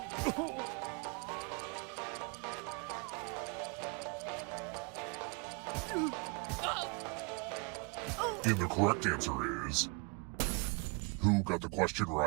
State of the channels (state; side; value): quieter; left; 32.2 dB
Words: And the correct answer is... Who got the question